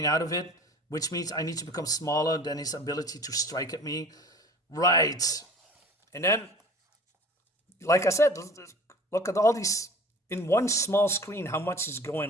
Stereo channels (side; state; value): both; normal; correlation 0.43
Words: out of it, which means I need to become smaller than his ability to strike at me. Right. And then, like I said, look at all these, in one small screen, how much is